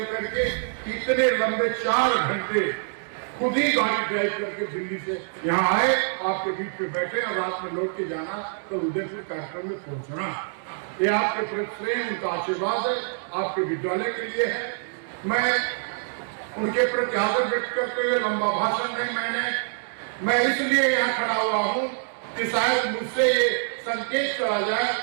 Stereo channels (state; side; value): silent; left; digital silence